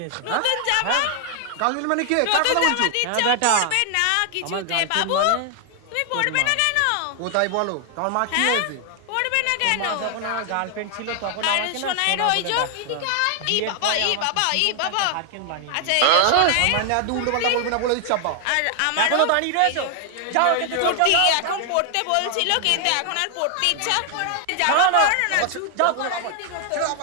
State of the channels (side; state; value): both; different; correlation 0.00